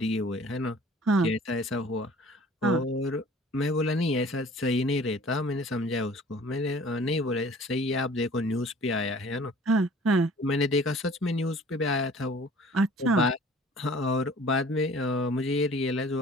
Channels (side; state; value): both; normal; correlation 0.49